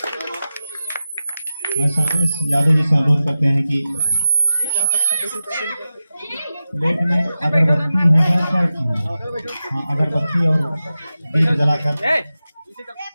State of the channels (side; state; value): both; inverted; correlation -0.94